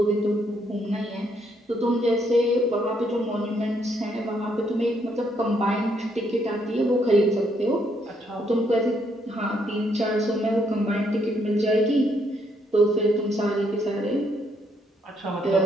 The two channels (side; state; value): both; normal; correlation 0.73